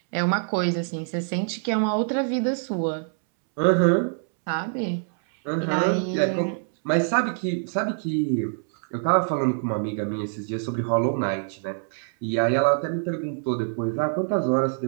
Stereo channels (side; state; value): left; silent; 62 dB below the other